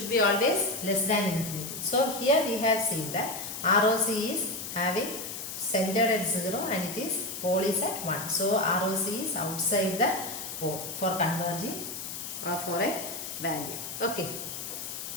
be always less than infinity. So here we have seen that ROC is having centered at 0 and it is pole is at 1. So ROC is outside the pole for converging or for a value. Okay.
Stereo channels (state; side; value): noise; left; hiss, 7 dB below the sound